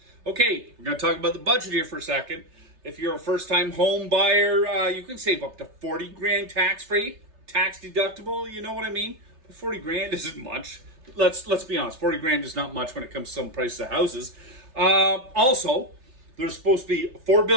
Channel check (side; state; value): left; late; 3.3 ms